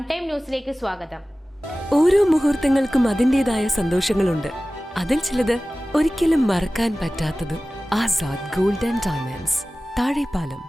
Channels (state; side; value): normal; both; correlation 0.97